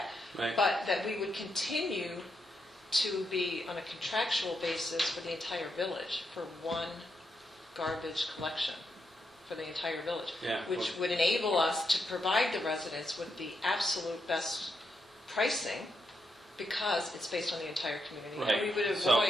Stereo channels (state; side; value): normal; both; correlation 0.83